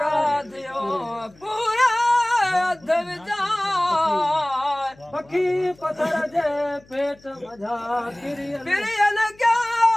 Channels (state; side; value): noise; left; hum, 28 dB below the sound